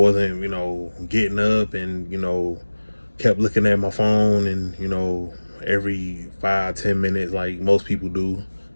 getting up and kept looking at my phone, and every 5-10 minutes like most people do,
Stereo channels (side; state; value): both; inverted; correlation -1.00